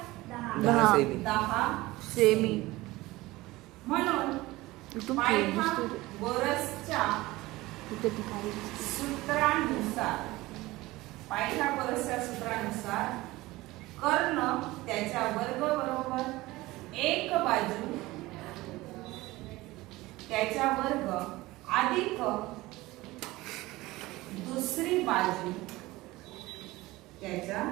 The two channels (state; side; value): quieter; left; 19.4 dB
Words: 10 सेमी. म्हणून पायथागोरसच्या सूत्रानुसार कर्ण त्याच्या वर्ग बरोबर एक बाजू त्याच्या वर्ग अधिक दुसरी बाजू त्याच्या